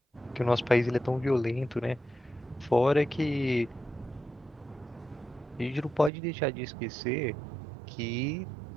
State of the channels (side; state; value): left; drops out; at 6.1 s